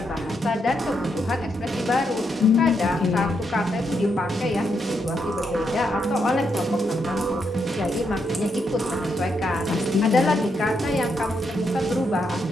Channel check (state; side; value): normal; both; correlation 0.80